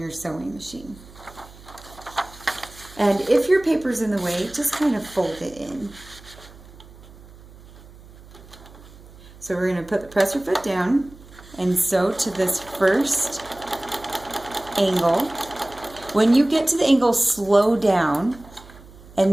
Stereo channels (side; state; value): right; noise; hum, 21 dB below the sound